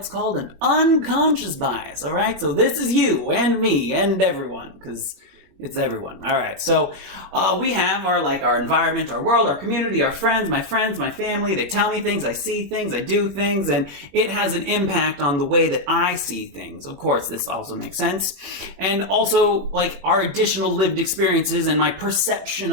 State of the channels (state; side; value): late; left; 21 ms